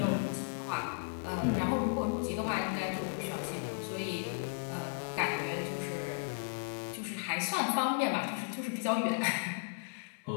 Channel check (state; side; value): silent; right; digital silence